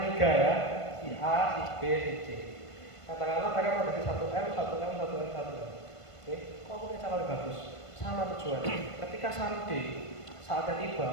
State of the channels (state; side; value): late; right; 1.5 ms